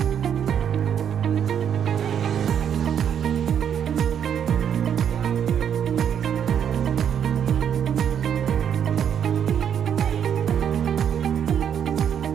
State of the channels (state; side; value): quieter; left; 8.6 dB